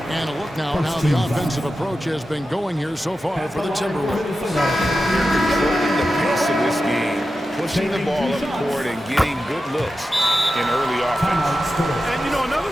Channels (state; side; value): normal; both; correlation 0.91